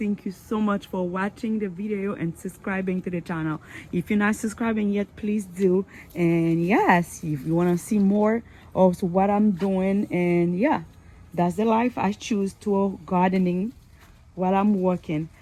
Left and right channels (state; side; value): identical; both; correlation 1.00